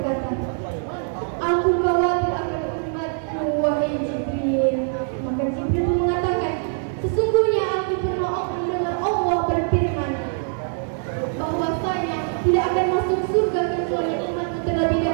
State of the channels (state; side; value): silent; left; 62 dB below the other